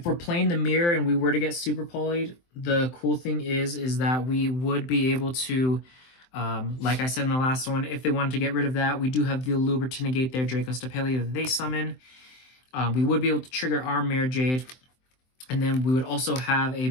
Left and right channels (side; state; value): right; late; 23 ms